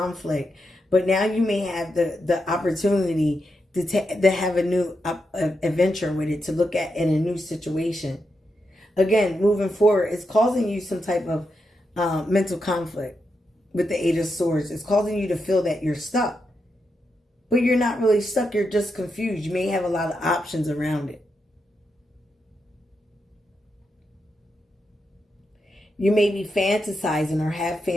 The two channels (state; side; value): normal; both; correlation 0.85